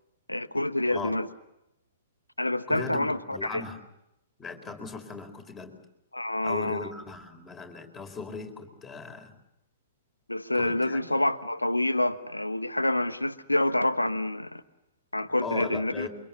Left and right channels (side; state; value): both; inverted; correlation -0.89